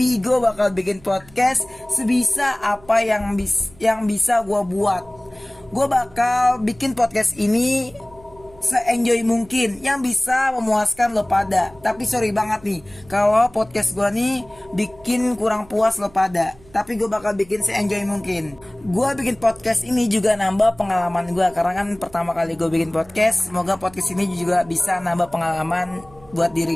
gue bakal bikin podcast sebisa apa yang bisa gue buat. Gue bakal bikin podcast ini se-enjoy mungkin, yang bisa memuaskan lo pada. Tapi sorry banget nih kalau podcast gue nih bikin kurang puas lo pada. Tapi gue bakal bikin se-enjoy mungkin. Gue bikin podcast ini juga nambah pengalaman gue, karena kan pertama kali gue bikin podcast. Semoga podcast ini juga bisa nambah pengalaman buat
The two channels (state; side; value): noise; right; hum, 25 dB below the sound